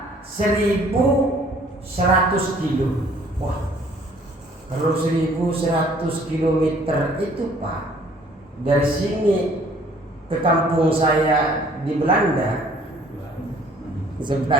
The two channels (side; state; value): both; normal; correlation 0.57